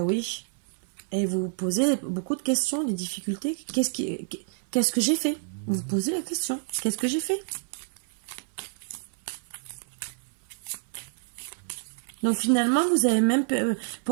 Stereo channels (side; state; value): left; silent; 58 dB below the other